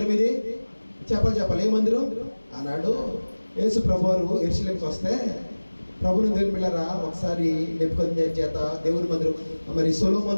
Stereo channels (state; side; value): inverted; both; correlation -1.00